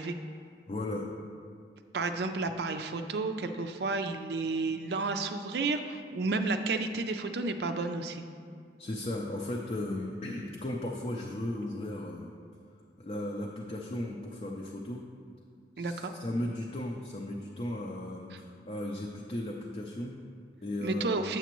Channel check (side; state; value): both; normal; correlation 0.49